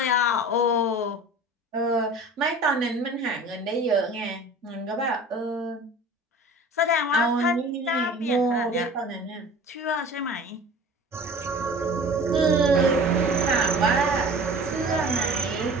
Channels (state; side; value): normal; both; correlation 0.41